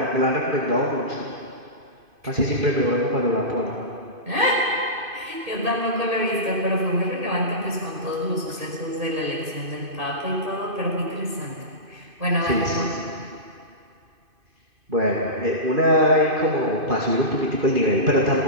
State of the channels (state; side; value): late; left; 2.5 ms